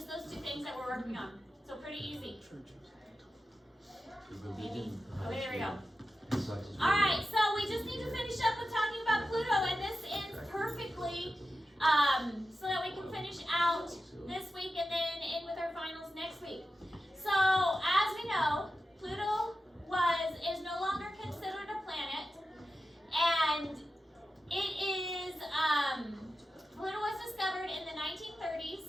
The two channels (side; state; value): both; normal; correlation 0.92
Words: those two things that we're working on. So pretty easy. Maybe. Okay, there we go. Alright, so we just need to finish up with talking about Pluto, and this ends perfectly, so that we can finish out this week and then end with our finals next week. So, as we know, Pluto is no longer considered a planet, and it is, Pluto was discovered in the 1930s